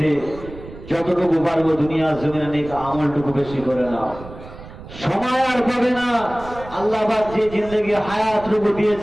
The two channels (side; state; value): right; noise; rumble, 15 dB below the sound